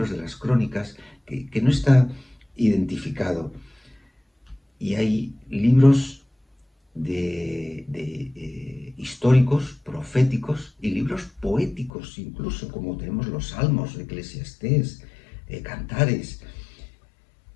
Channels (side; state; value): right; drops out; at 11.9 s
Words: de las crónicas, que no está identificado. Y hay libros históricos, proféticos y libros poéticos, incluso, como tenemos los Salmos, Eclesiastés, Cantares.